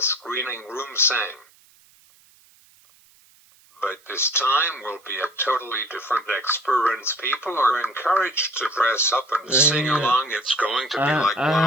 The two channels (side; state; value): right; noise; hiss, 30 dB below the sound